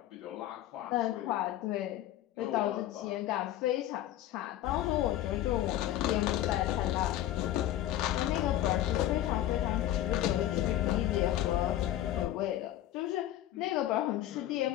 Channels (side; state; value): right; quieter; 13.2 dB